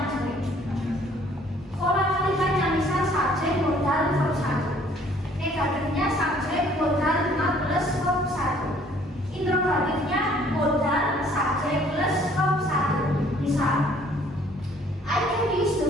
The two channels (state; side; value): normal; both; correlation 0.59